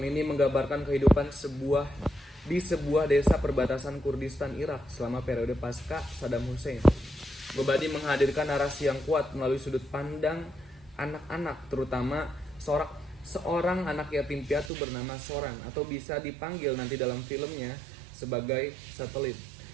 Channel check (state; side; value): drops out; left; at 14.7 s